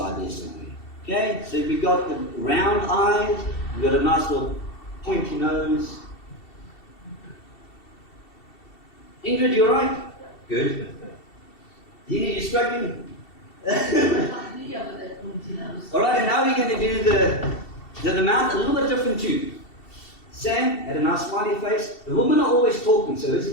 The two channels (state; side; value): late; right; 2.7 ms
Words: there somewhere. Okay, so we've got the round eyes. We've got a nice little pointy nose. Ingrid, you alright? Good. Dina, you struggling? Alright, and now we're going to do the mouth a little bit different too. Sam had a nice smiley face. The women are always talking, so this